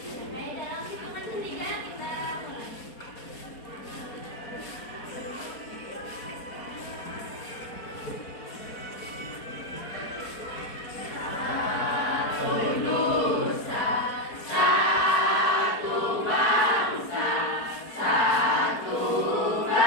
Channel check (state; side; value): late; right; 4.3 ms